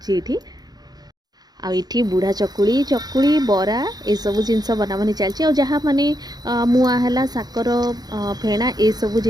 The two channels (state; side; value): late; left; 0.19 ms